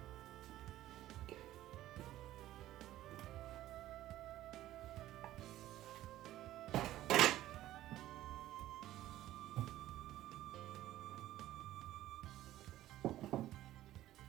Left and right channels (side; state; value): left; quieter; 14.3 dB